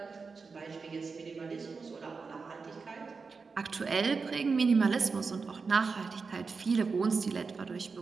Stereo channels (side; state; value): left; quieter; 4.8 dB